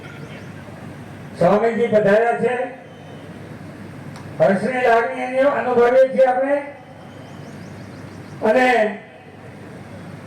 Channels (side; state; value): both; identical; correlation 1.00